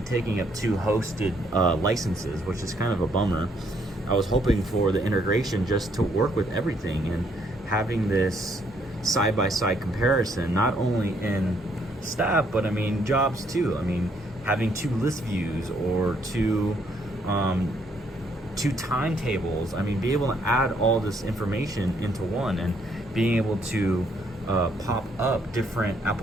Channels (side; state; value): both; normal; correlation 0.70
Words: taking up two hosted licenses, which is kind of a bummer. I was hoping for the integration just to work with everything and having this side-by-side comparison, not only in staff, but I mean jobs too. I mean, having two list views or two timetables. I mean, be able to add all this information into one and being able to pop up different